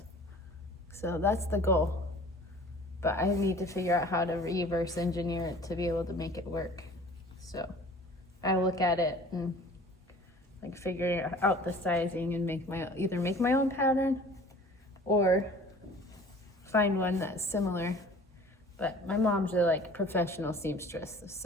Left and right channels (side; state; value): both; normal; correlation 0.47